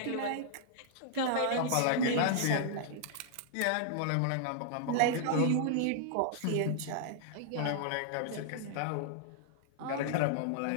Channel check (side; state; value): both; different; correlation -0.01